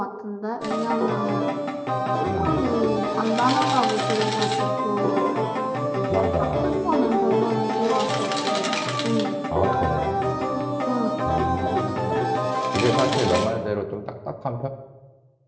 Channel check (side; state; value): both; identical; correlation 1.00